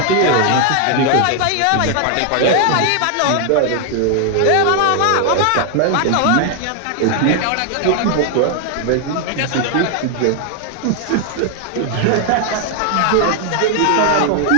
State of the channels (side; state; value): both; different; correlation 0.00